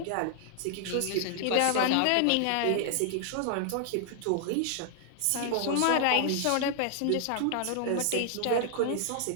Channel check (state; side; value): different; both; correlation 0.00